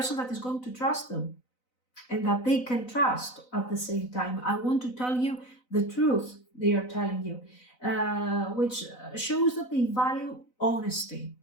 that is going to trust them and that they can trust at the same time. I want to tell you the truth they are telling you, which shows that they value honesty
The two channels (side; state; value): right; late; 4.0 ms